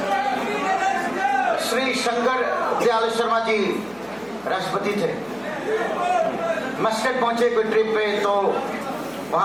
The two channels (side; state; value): left; noise; hum, 28 dB below the sound